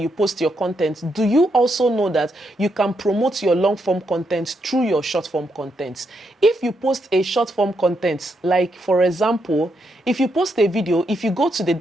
post your content, do you also know that you can promote your long form content through your short form content? If you post a short form content, like for example, if you post a video, if you go to the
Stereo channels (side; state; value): both; normal; correlation 0.80